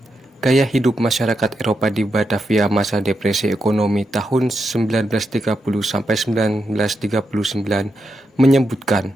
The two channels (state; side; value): normal; both; correlation 0.85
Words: Gaya Hidup Masyarakat Eropa di Batavia Masa Depresi Ekonomi tahun 1930-1939